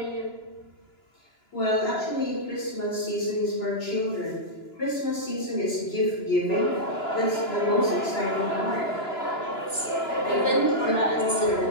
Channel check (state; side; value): late; right; 2.9 ms